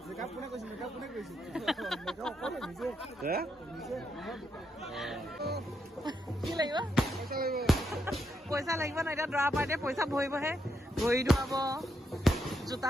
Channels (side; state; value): both; normal; correlation 0.80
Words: কি লাগিব পইচা লাগিব ন এতিয়া দৰা পাৰ্টিয়ে পইচা ভৰিবহে ভৰি ধুৱাব জোতা